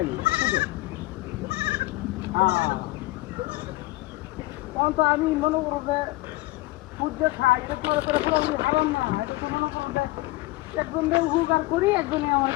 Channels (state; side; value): quieter; right; 19.6 dB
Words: সুদে। তখন তো আমি মনে করো যে সুদ যে খাই এটা তো পুরোপুরি খাবেন না, এটা তো মনে করো যে একজনে উপকার করি, একজনে আমার